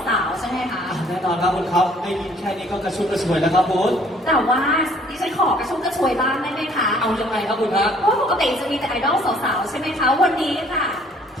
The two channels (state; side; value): normal; both; correlation 0.59